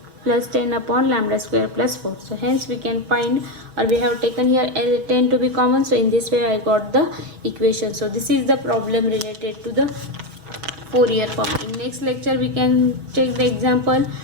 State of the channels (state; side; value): late; left; 6.2 ms